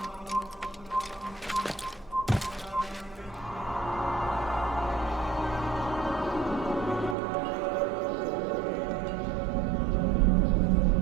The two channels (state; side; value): drops out; left; at 7.2 s